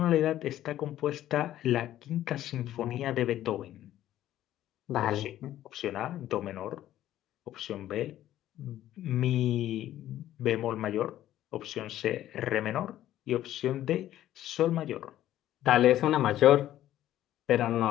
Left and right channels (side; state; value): right; quieter; 12.9 dB